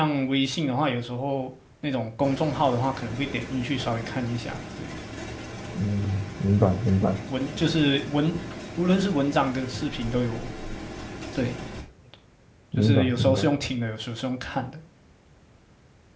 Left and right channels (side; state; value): both; identical; correlation 1.00